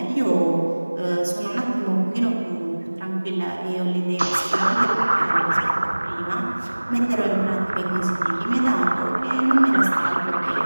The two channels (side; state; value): both; inverted; correlation -1.00